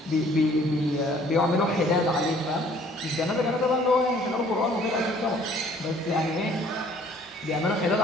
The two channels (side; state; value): both; normal; correlation 0.57